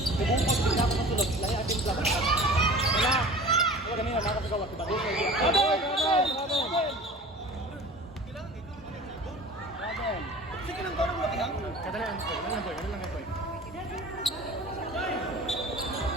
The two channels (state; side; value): normal; both; correlation 0.41